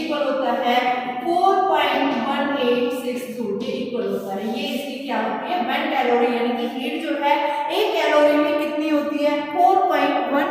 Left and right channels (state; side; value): identical; both; correlation 1.00